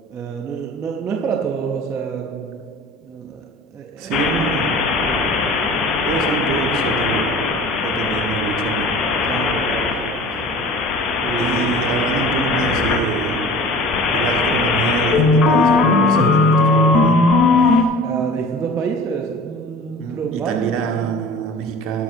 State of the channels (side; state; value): both; normal; correlation 0.42